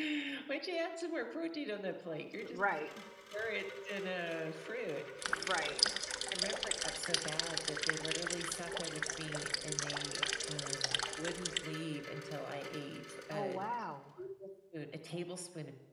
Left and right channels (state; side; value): identical; both; correlation 1.00